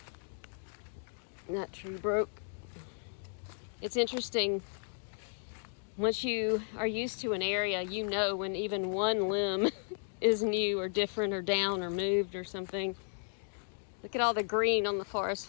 That tree broke. It's interesting. Once you are used to an area, you know when even one limb is new or different or down or moved or something. Look at all the green on the forest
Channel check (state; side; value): silent; right; digital silence